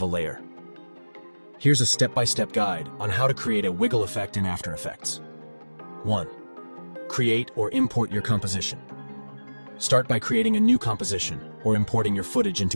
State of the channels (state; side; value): inverted; both; correlation -1.00